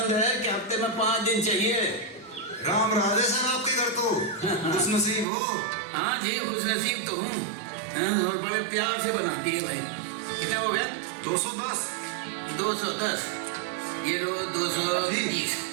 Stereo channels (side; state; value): left; drops out; at 5.2 s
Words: है कि हफ्ते में 5 दिन चाहिए। राम राधे सर, आपके घर तो खुशनसीब हो। हाँ जी, खुशनसीब तो हूँ। और बड़े प्यार से बनाती है भाई। कितना हो गया? 210। 210। ये लो 220।